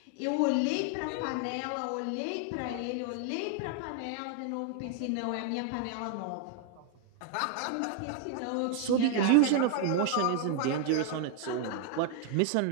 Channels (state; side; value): different; both; correlation 0.00